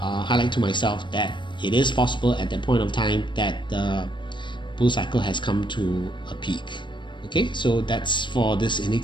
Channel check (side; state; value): right; late; 0.23 ms